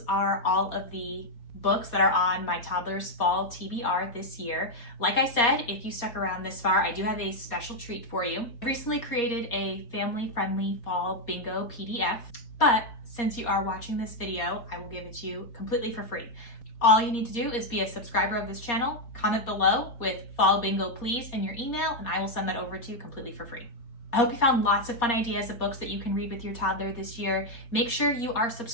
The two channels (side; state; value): right; late; 4.2 ms